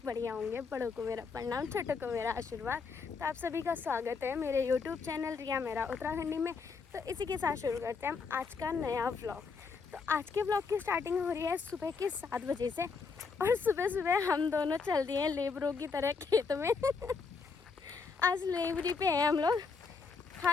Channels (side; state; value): right; quieter; 5.0 dB